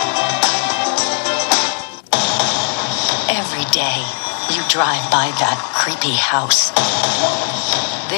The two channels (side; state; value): right; silent; 67 dB below the other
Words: Every day, you drive by that creepy house.